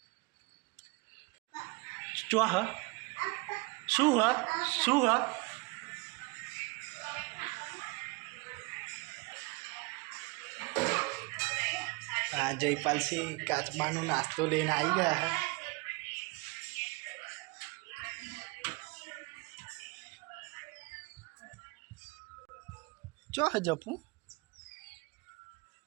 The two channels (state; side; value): quieter; left; 26.9 dB